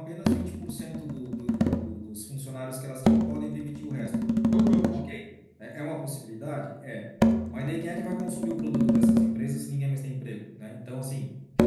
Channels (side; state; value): both; identical; correlation 1.00